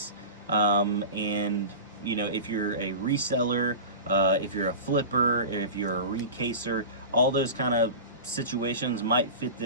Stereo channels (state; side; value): inverted; both; correlation -0.31